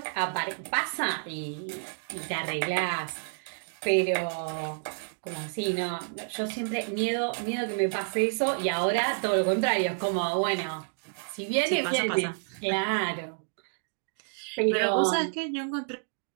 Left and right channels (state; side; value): silent; left; digital silence